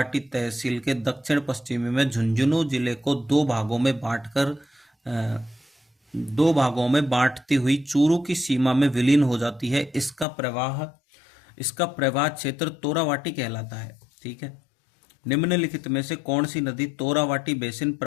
तहसील के दक्षिण पश्चिमी में झुंझुनू जिले को दो भागों में बांटती हुई चूरू की सीमा में विलीन हो जाती है। इसका प्रवाह क्षेत्र तोरावाटी कहलाता है। ठीक है। निम्नलिखित में से कौन सी नदी तोरावाटी बेसिन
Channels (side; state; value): right; drops out; at 10.2 s